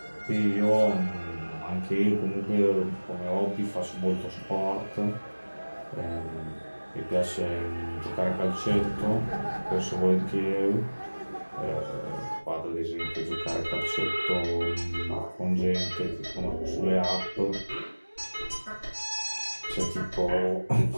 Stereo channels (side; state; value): both; inverted; correlation -1.00